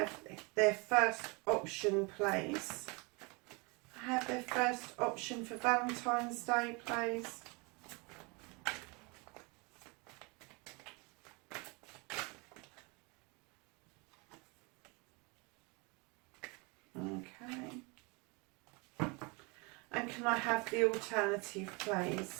their first option, please? Have their first option for Valentine's Day, please? Okay. And can I have the alternative,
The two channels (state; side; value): quieter; left; 29.3 dB